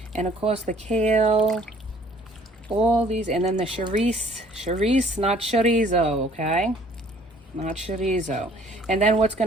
and of course the kale, all these, and then the chorizo, not chorizo, okay? Not chorizo. And then what's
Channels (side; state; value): both; normal; correlation 0.57